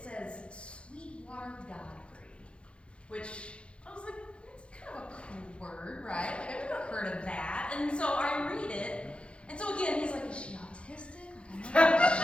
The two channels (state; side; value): late; right; 0.060 ms